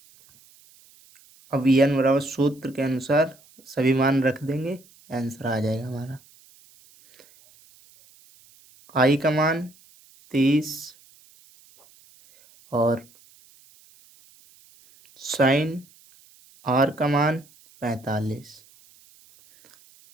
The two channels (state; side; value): noise; right; hiss, 28 dB below the sound